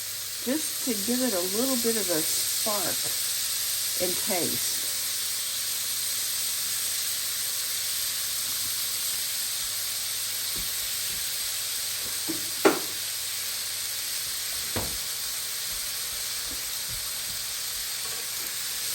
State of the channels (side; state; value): both; identical; correlation 1.00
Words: just to give it a little bit of a spark and taste.